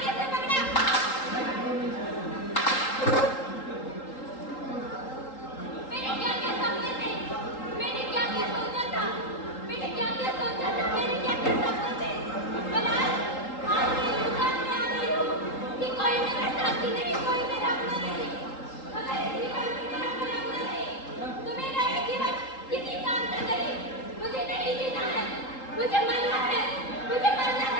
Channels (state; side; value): late; right; 3.8 ms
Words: कैसे पकड़ा? मैंने क्या क्या सपने थे, मैंने क्या क्या सोचा था, मैंने क्या क्या सोचा था, मैंने क्या क्या सपने थे। पर आज मैं इस बात में आ गई हूँ कि कोई मेरा साथी नहीं, कोई मेरा अपना नहीं। अगर इस जीवन में मेरा कोई अपना नहीं, तो मेरा ये जीवन किसी काम का नहीं। मुझे नहीं जीना है, मुझे मरना है, मुझे मरना